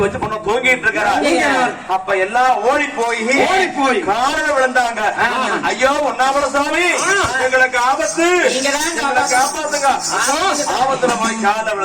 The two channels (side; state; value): both; identical; correlation 1.00